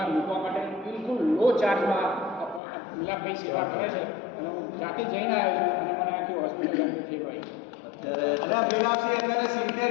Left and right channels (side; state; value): right; drops out; at 2.6 s